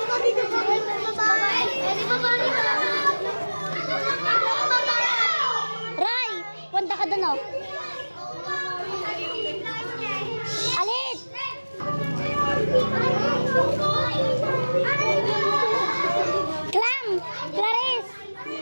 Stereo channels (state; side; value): inverted; both; correlation -1.00